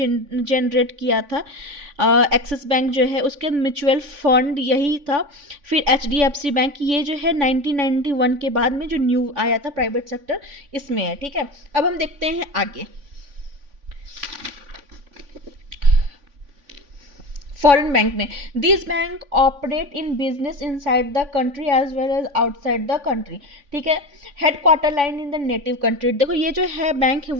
किया था। एक्सिस बैंक जो है उसके म्यूचुअल फंड यही था। फिर एचडीएफसी बैंक, ये जो है 1991 के बाद में जो न्यू आया था प्राइवेट सेक्टर, इसमें है, ठीक है। अब हम देखते हैं आगे। फॉरेन बैंक में, this bank operate in business inside the country as well as outside the country, ठीक है। Headquarter line in the native country, देखो ये जो है बैंक है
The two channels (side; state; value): left; late; 3.5 ms